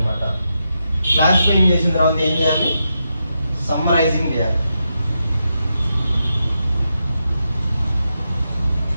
క్లాసిఫైయింగ్ చేసిన తర్వాత ఏం చేయాలి? సమ్మరైజింగ్ చేయాలి.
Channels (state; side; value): inverted; both; correlation -0.86